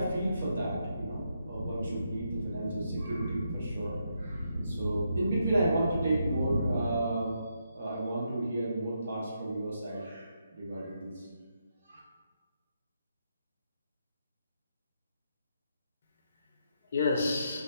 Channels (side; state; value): both; inverted; correlation -0.80